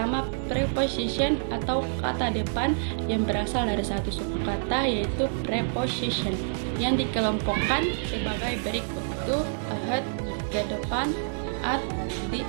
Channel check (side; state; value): left; silent; digital silence